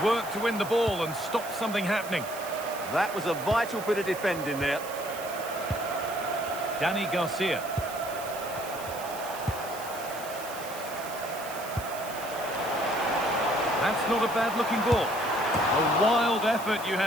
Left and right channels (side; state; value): right; noise; hiss, 13 dB below the sound